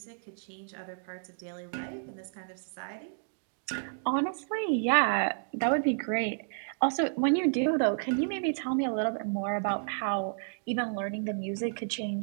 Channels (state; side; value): silent; left; digital silence